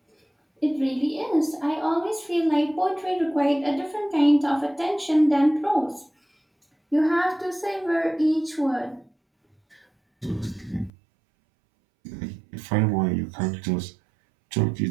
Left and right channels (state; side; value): drops out; left; at 10.9 s